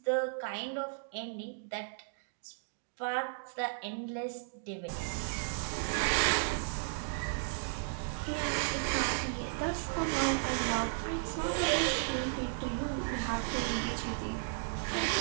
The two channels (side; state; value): left; silent; digital silence